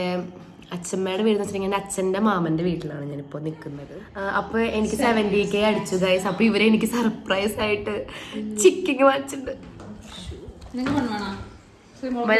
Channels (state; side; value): identical; both; correlation 1.00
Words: അച്ഛമ്മയുടെ വീട് എന്ന് വെച്ചിട്ടുണ്ടെങ്കിൽ എൻ്റെ അച്ഛൻ്റെ മാമൻ്റെ വീട്ടിലാണ് ഞാനിപ്പോൾ നിൽക്കുന്നത്. അപ്പോൾ എനിക്ക് 70K അടിച്ചു ഗൈസ്. അപ്പോൾ ഇവരെ എനിക്ക് സർപ്രൈസ് ആയിട്ട് ചിക്കൻ വാങ്ങിച്ചിട്ടുണ്ട്.